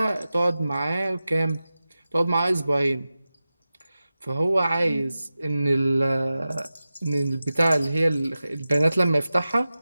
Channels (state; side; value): inverted; both; correlation -0.95